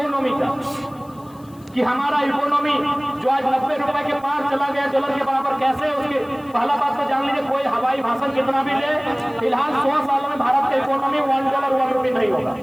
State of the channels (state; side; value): noise; left; hiss, 28 dB below the sound